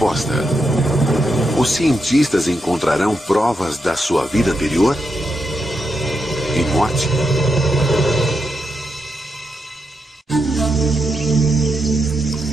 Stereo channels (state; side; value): normal; both; correlation 0.84